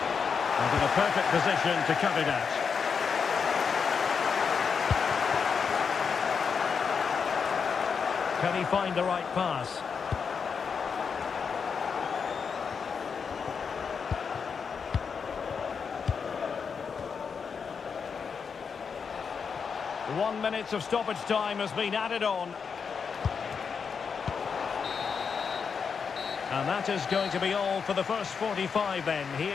in a perfect position to cut it out. Can he find the right pass? One minute of stoppage time has been added on. And that is going to be all for the first 45 then,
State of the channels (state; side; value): quieter; right; 6.0 dB